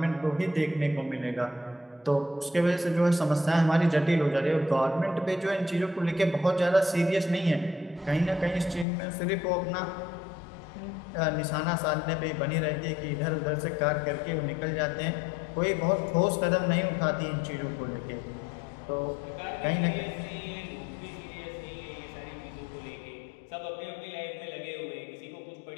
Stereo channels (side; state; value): right; drops out; at 8.8 s